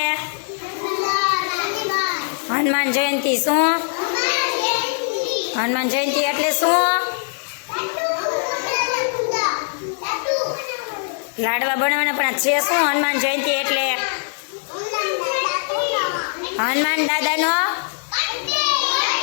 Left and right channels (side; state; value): right; silent; digital silence